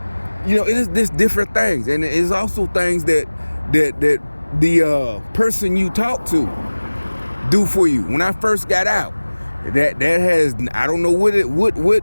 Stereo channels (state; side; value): inverted; both; correlation -1.00